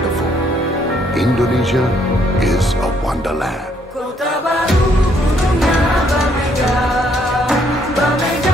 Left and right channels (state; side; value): normal; both; correlation 0.69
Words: Indonesia is a wonderland.